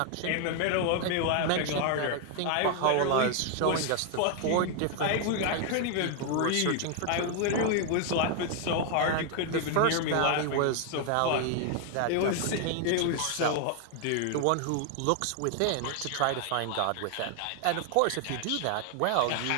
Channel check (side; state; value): both; different; correlation 0.00